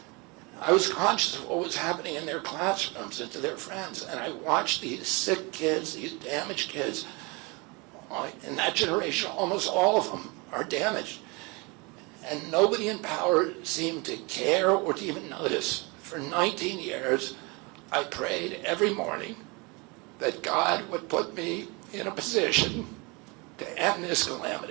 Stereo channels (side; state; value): left; quieter; 28.3 dB